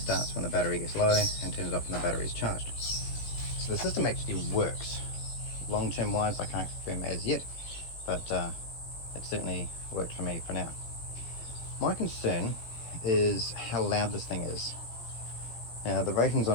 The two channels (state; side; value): late; right; 18 ms